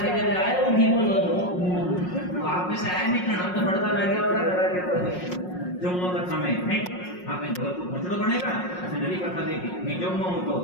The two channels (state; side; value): late; right; 5.5 ms